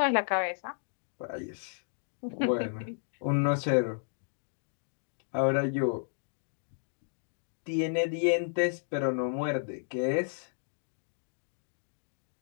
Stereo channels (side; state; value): right; silent; digital silence